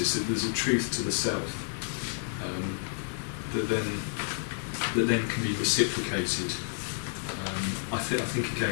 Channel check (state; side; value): silent; right; digital silence